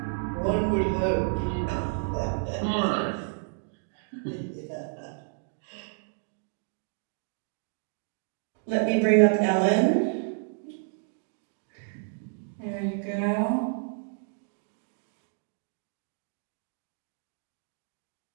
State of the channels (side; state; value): left; silent; digital silence